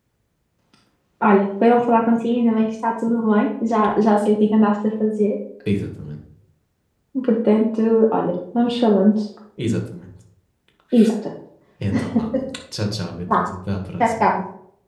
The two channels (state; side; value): identical; both; correlation 1.00